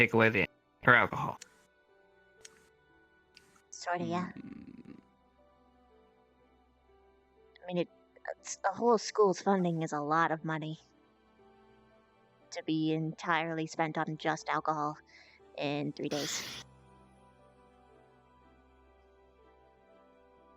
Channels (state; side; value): identical; both; correlation 1.00